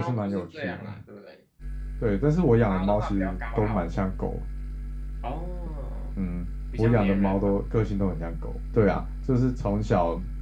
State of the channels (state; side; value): identical; both; correlation 1.00